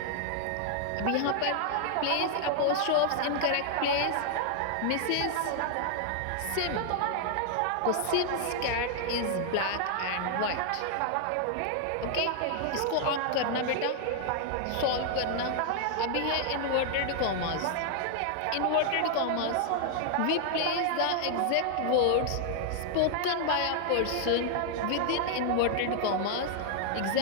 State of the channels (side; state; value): both; different; correlation 0.00